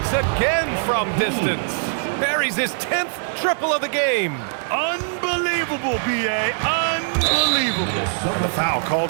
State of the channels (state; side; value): silent; left; digital silence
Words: again from distance. Buries his 10th triple of the game. Unbelievable, B.A. Unbelievable. And the foul